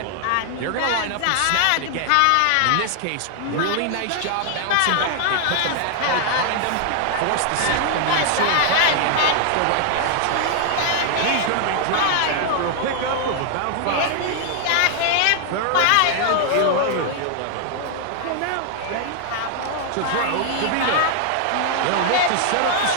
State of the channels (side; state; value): both; different; correlation 0.00